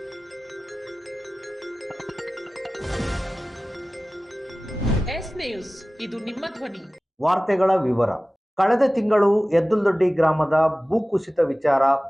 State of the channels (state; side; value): normal; both; correlation 0.97